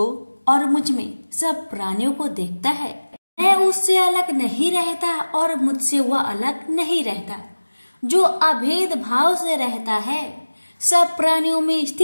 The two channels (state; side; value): inverted; both; correlation -1.00